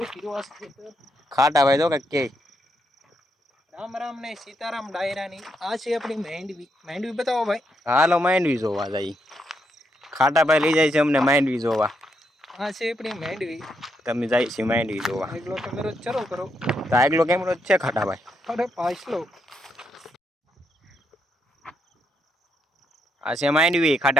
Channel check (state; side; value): normal; both; correlation 0.79